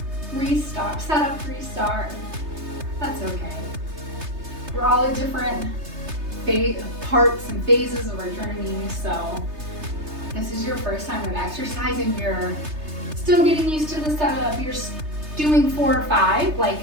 restart, setup, restart. That's okay. We're all at different parts and phases of our journey, so this is your first time with exercise and you're still getting used to the setup, you're doing 4 or 5, like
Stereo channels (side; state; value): left; late; 3.3 ms